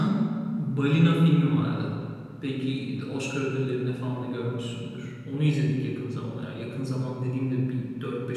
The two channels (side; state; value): both; identical; correlation 1.00